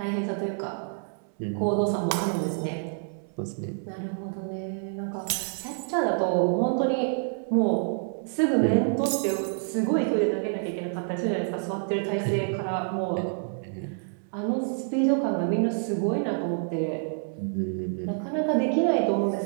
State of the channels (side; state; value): left; silent; 60 dB below the other